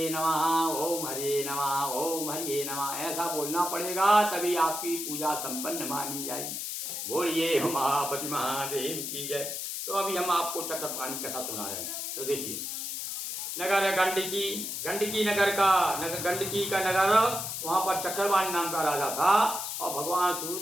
नमः, ओम हरिये नमः, ओम हरिये नमः ऐसा बोलना पड़ेगा, तभी आपकी पूजा संपन्न मानी जाएगी। बोलिए उमापति महादेव की जय। तो अभी हम आपको चक्रपाणी कथा सुना रहे हैं। तो देखिए नगर गंडकी गंडकी का नगर, वहाँ पर चक्रपाणी नाम का राजा था और भगवान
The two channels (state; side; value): noise; left; hiss, 4 dB below the sound